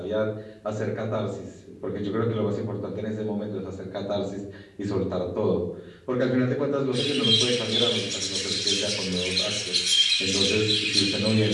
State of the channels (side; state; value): both; identical; correlation 1.00